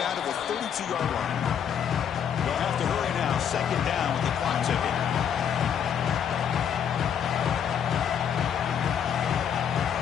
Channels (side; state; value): right; quieter; 8.4 dB